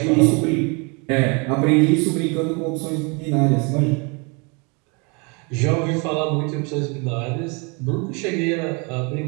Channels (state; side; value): quieter; left; 31.4 dB